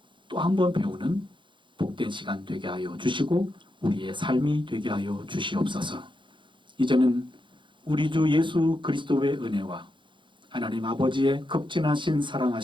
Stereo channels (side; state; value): left; late; 0.23 ms